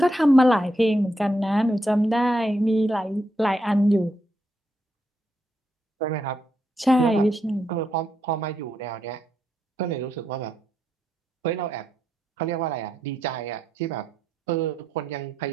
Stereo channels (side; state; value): both; normal; correlation 0.81